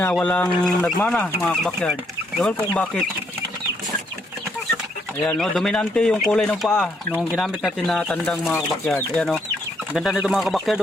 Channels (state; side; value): normal; both; correlation 0.73